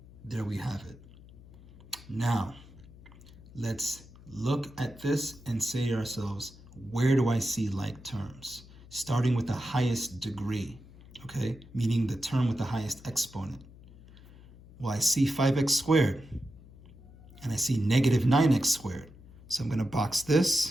there we have it. Now, let's look at this and say to ourselves, where do I see like terms? Starting with the highest degree, okay? Meaning the term with the highest exponent. Well, I see 5x squared, and I see negative 9x squared. So I'm going to box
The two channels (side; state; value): left; noise; hum, 21 dB below the sound